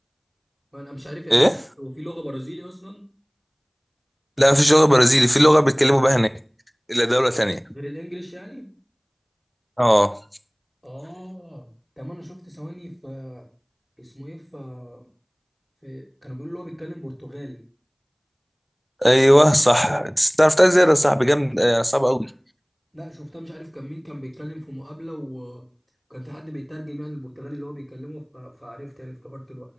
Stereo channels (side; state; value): both; identical; correlation 1.00